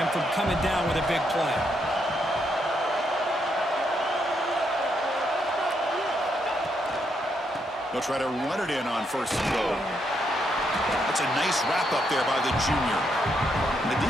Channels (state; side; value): normal; both; correlation 0.77